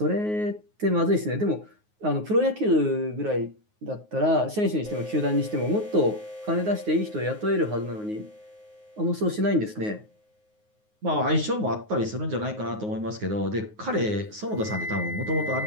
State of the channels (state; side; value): late; left; 9.5 ms